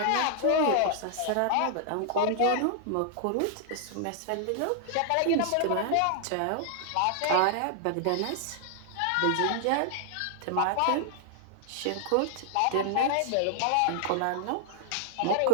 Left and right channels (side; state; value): both; different; correlation 0.00